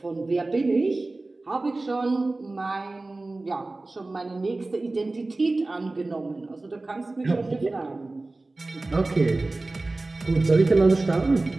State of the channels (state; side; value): quieter; left; 3.1 dB